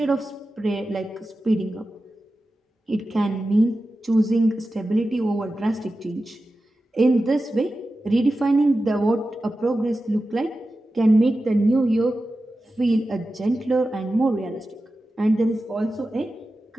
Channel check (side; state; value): both; normal; correlation 0.93